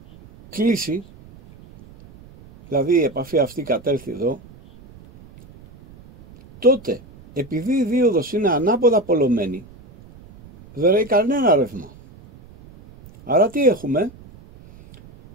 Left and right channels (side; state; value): right; noise; rumble, 22 dB below the sound